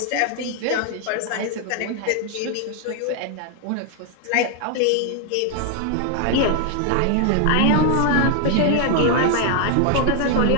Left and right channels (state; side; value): different; both; correlation 0.00